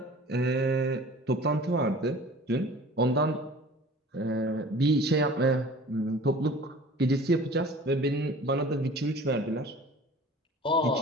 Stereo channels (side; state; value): both; normal; correlation 0.45